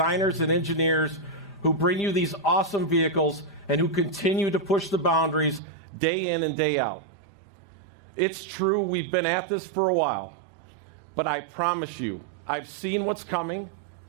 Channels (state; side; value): drops out; left; at 5.6 s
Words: and engineers who bring you these awesome vehicles and who continue to push the boundaries day in and day out. It's true, we've been at this for a while, but I promise you, I've seen what's coming